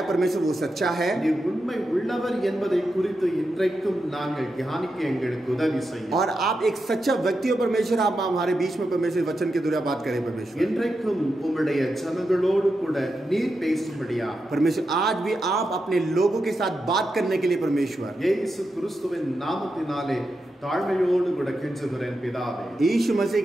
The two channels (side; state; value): both; normal; correlation 0.87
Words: परमेश्वर वो सच्चा है। நீர் உண்மை உள்ளவர் என்பதை குறித்து இன்றைக்கும் நாங்கள் தியானிக்க எங்களுக்கு உதவி செய்யும்। और आप एक सच्चा व्यक्ति हो परमेश्वर आप हमारे बीच में परमेश्वर वचन के द्वारा बात करें परमेश्वर। இன்றைக்கும் உம்முடைய ஜனங்களோடு கூட நீர் பேசும்படியா परमेश्वर आज भी आप अपने लोगों के साथ बात करने के लिए परमेश्वर இயேசு கிறிஸ்துவின் நாமத்தினாலே ताழ்மையோடு கூட கெஞ்சுகிறேன் பிதாவே। यीशु मसीह